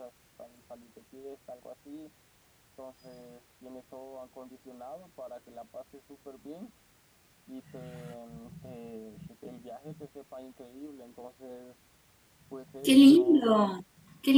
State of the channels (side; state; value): both; identical; correlation 1.00